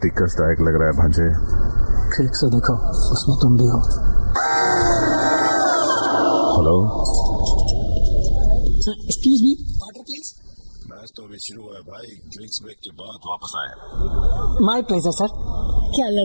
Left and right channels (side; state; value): both; inverted; correlation -1.00